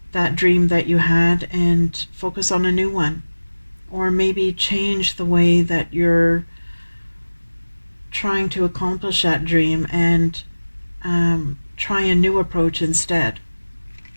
that dream that you had and focus on a new one. Or maybe change the way that you're trying to accomplish that dream and try a new approach instead.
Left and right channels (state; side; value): inverted; both; correlation -1.00